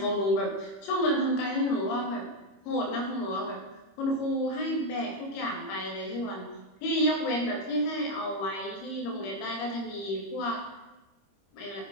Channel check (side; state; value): right; late; 25 ms